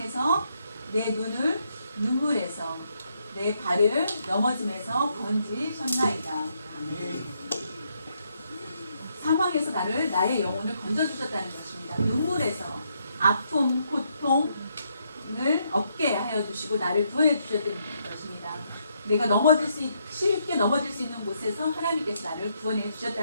내 눈을 눈물에서 내 발을 넘어짐에서 건지셨나이다. 아멘. 사망에서 나의 영혼을 건져주셨다는 것입니다. 눈물에서 아픔, 고통을 없게 하여 주시고 나를 구원해 주셨던 것입니다. 내가 쉽게 넘어질 수 있는 곳에서 하나님께서 나를 구원해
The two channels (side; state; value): both; inverted; correlation -0.75